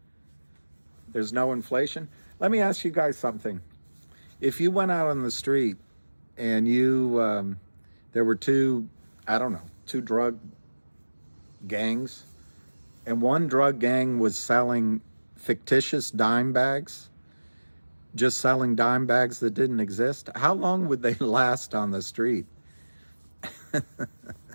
There's no inflation? Let me ask you guys something. If you went out on the street and you, there were two drug gangs, and one drug gang was selling fictitious dime bags, just selling dime bags that didn't exist, how long would they last on the street?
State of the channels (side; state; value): both; inverted; correlation -1.00